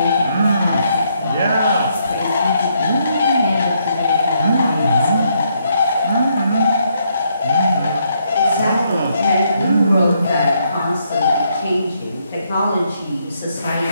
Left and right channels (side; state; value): both; inverted; correlation -0.75